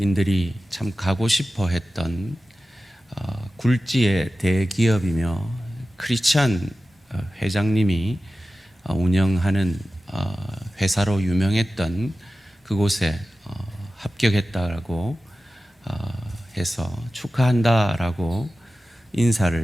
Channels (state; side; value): normal; both; correlation 0.95